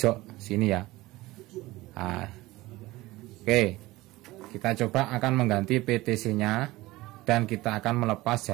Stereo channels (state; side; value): quieter; left; 19.1 dB